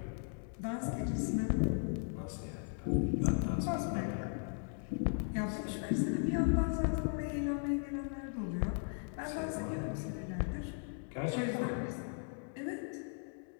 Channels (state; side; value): silent; right; 53 dB below the other